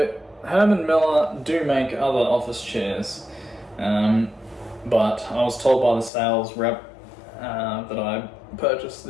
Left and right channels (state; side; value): drops out; right; at 6.1 s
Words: Herman Miller do make other office chairs, but I was told by the sales rep that I purchased